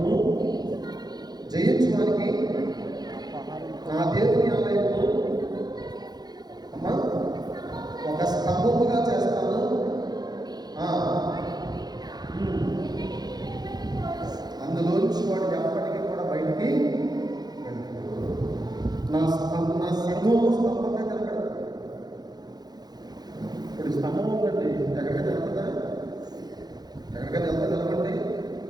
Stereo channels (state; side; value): late; left; 0.19 ms